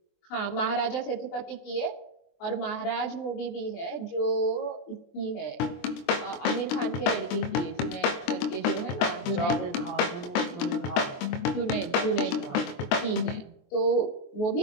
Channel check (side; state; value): right; late; 23 ms